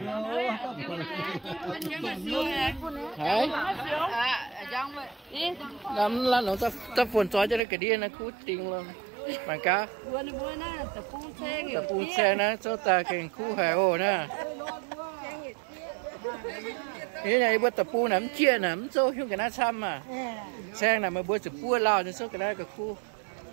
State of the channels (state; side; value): drops out; left; at 7.6 s